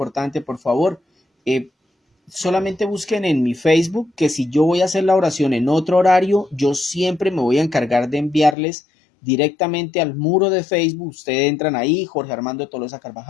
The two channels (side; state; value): right; drops out; at 8.6 s